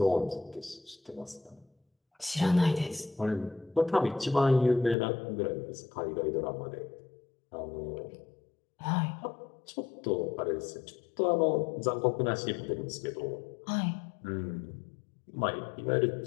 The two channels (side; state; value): right; drops out; at 5.0 s